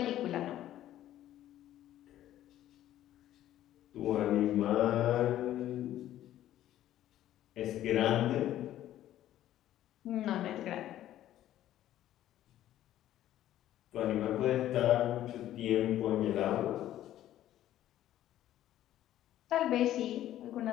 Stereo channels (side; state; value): right; quieter; 12.8 dB